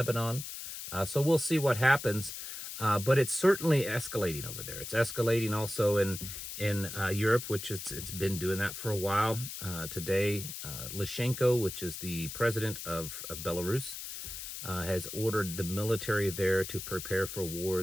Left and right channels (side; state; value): left; noise; hiss, 8 dB below the sound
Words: So we'll see what happens. But it's certainly escalating over there. It's escalating also in Europe, which it's been doing that for a while. Today, Lyshenko, which is the president of Belarus, has ordered the military there to prepare for